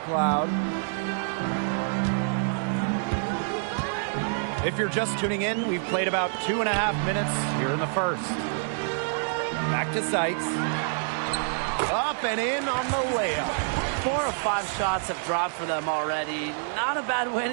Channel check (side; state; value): left; silent; 60 dB below the other